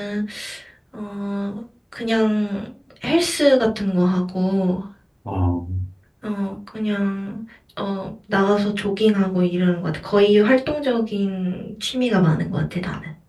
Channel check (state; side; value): identical; both; correlation 1.00